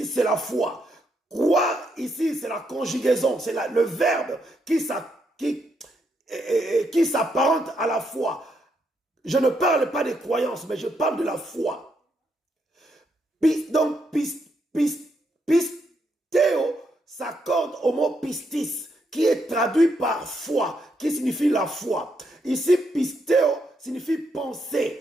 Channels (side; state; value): both; normal; correlation 0.78